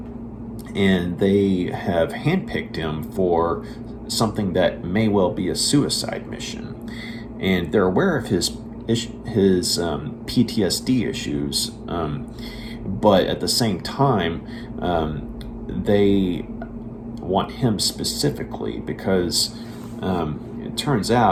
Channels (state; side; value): identical; both; correlation 1.00